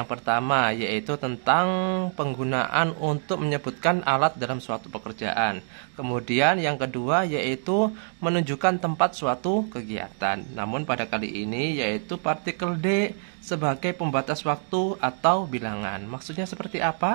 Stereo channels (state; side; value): silent; left; 56 dB below the other